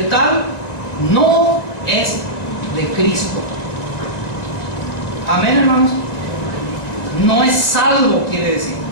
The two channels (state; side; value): late; right; 1.9 ms